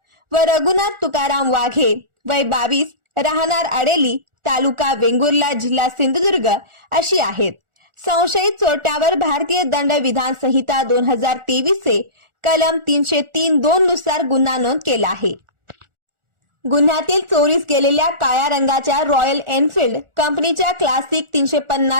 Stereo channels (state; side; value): late; left; 1.4 ms